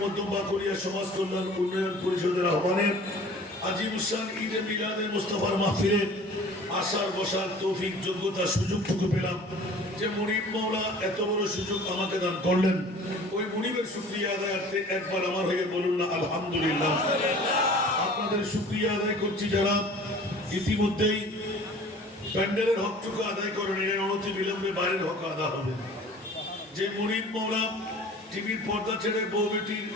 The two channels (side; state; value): both; normal; correlation 0.46